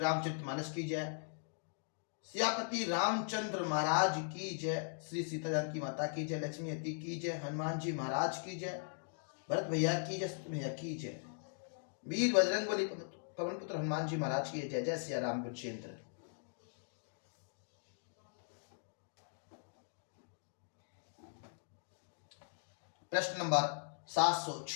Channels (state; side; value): silent; right; digital silence